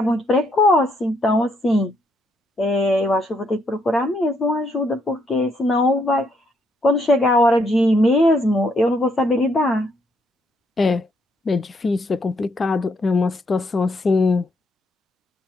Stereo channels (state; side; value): normal; both; correlation 0.73